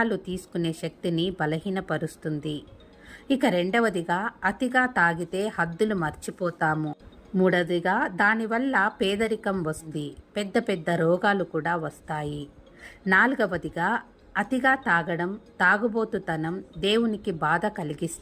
తీసుకునే శక్తిని బలహీనపరుస్తుంది. ఇక రెండవదిగా అతిగా తాగితే హద్దులు మర్చిపోతాము. మూడవదిగా దానివల్ల పేదరికం వస్తుంది, పెద్ద పెద్ద రోగాలు కూడా వస్తాయి. నాలుగవదిగా అతిగా తాగడం, తాగుబోతుతనం దేవునికి బాధ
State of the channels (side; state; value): both; identical; correlation 1.00